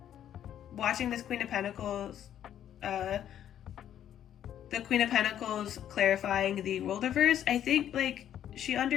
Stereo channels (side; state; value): right; quieter; 10.5 dB